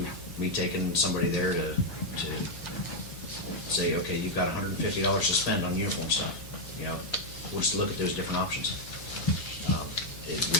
me taking somebody there to say, okay, you've got $150 to spend on uniform stuff, you know, we'll just look at those different options. We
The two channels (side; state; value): right; noise; rumble, 22 dB below the sound